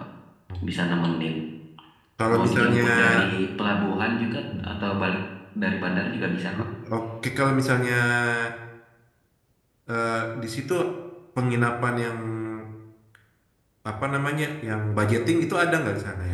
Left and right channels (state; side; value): identical; both; correlation 1.00